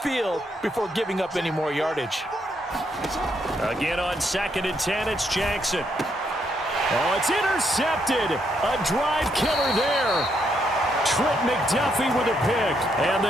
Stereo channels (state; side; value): normal; both; correlation 0.76